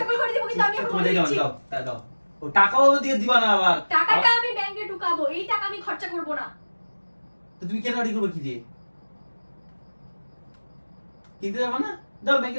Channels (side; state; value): both; inverted; correlation -1.00